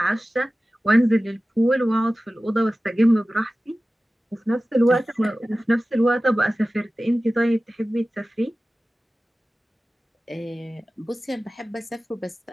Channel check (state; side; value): normal; both; correlation 0.96